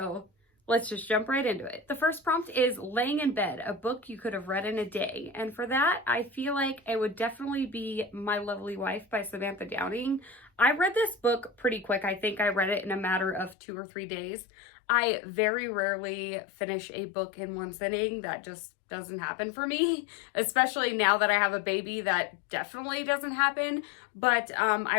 let's just jump right into it. The first prompt is Laying in Bed, a book you could have read in a day. And for that, I feel like it would definitely be My Lovely Wife by Samantha Downing. I read this book pretty quick. I think I read it in a matter of 2 or 3 days. I very rarely finish a book in one sitting. That just doesn't happen for me, especially now that I have a baby. That definitely doesn't happen. But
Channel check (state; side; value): drops out; right; at 13.6 s